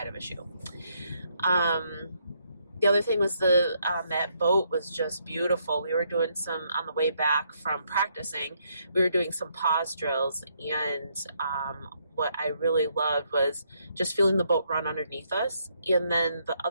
of a shoe. The other thing was that boat was just beautiful. We were doing on the way back from practicing, we were doing some pause drills, and what I really loved was just feeling the boat run underneath us. And then the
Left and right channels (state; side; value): inverted; both; correlation -0.74